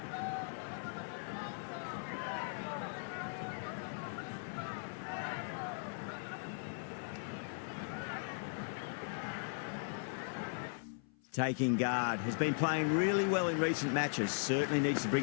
Taking guard, has been playing really well in recent matches. Certainly needs to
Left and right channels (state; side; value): silent; right; 52 dB below the other